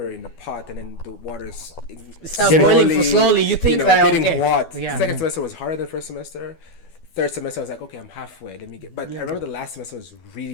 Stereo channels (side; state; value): right; late; 12 ms